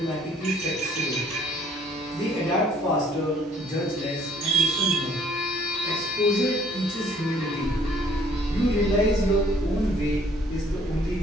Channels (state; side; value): normal; both; correlation 0.59